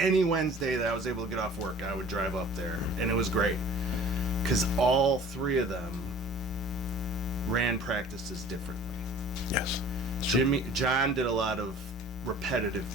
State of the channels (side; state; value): both; normal; correlation 0.48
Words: Wednesday that I was able to get off work, I would drive up there, and it was great because all three of them ran practices differently. Yes. John did a lot of repetitive